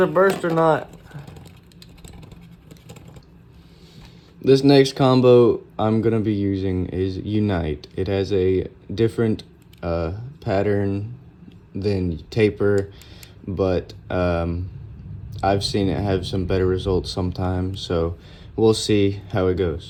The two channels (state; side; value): identical; both; correlation 1.00